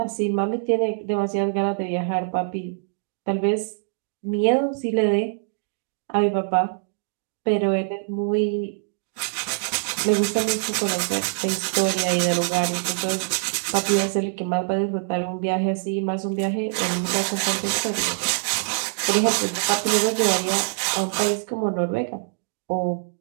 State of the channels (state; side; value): silent; left; digital silence